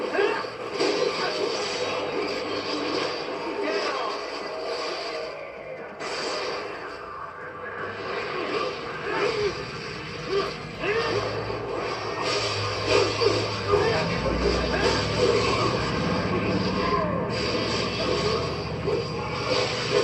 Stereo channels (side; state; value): both; identical; correlation 1.00